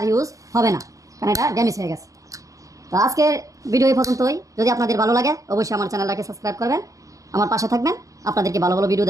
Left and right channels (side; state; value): left; late; 0.16 ms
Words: আর ইউজ হবে না, কারণ এটা ড্যামেজ হয়ে গেছে। তো আজকের ভিডিও এই পর্যন্তই। যদি আপনাদের ভালো লাগে অবশ্যই আমার চ্যানেলটাকে সাবস্ক্রাইব করবেন, আমার পাশে থাকবেন, আপনাদেরকে ভালো ভালো ভিডিও